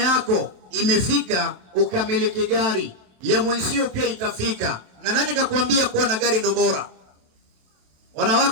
imefika ukamiliki gari. Ya mwenzio pia itafika. Na nani kakwambia kuwa na gari ndo bora?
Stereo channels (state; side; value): late; left; 27 ms